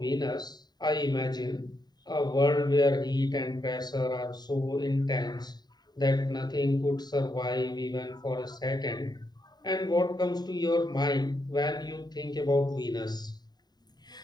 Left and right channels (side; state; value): right; late; 0.20 ms